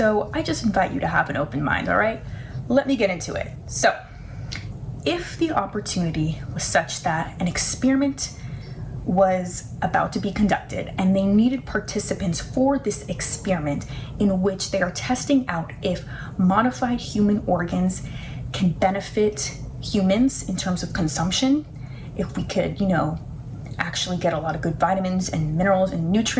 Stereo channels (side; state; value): both; identical; correlation 1.00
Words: I just invite you to have an open mind, all right? Let me get into it. So, if the opportunity was such that an experiment was about to be conducted and they needed participants for this experiment in which they are testing out if modified human organs can benefit humans in terms of consumption, if we could, you know, actually get a lot of good vitamins and minerals and